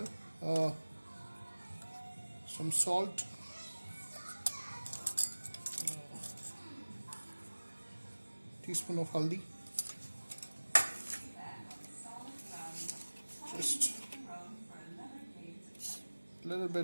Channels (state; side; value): inverted; both; correlation -1.00